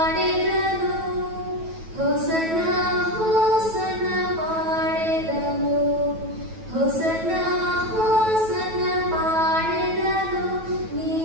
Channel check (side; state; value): left; late; 9.2 ms